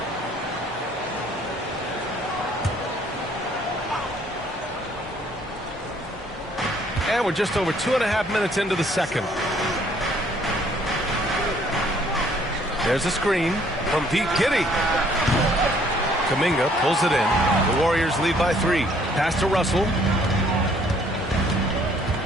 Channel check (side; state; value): both; normal; correlation 0.62